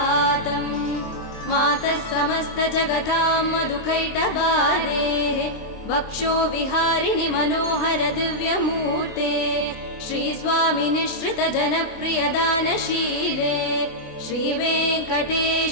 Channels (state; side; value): late; right; 23 ms